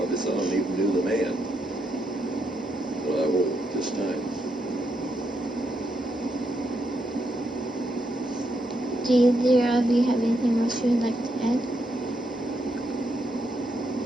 some of them even knew the man, but I won't this time. Do either of you have anything else you would like to add?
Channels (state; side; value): normal; both; correlation 0.79